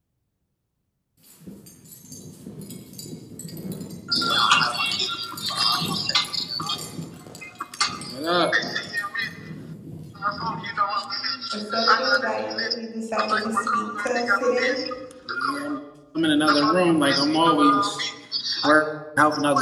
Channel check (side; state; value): both; identical; correlation 1.00